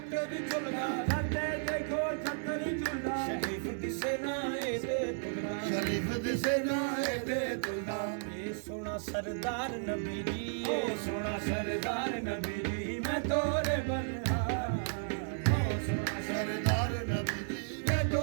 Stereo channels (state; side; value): silent; left; digital silence